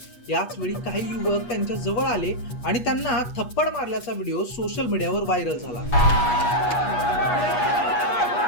याच वेळी काही युवक त्यांच्या जवळ आले आणि त्यांना थप्पड मारल्याचा व्हिडिओ सोशल मीडियावर व्हायरल झाला।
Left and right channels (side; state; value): right; late; 8.3 ms